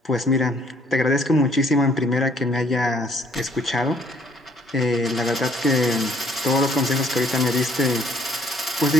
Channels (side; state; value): both; normal; correlation 0.63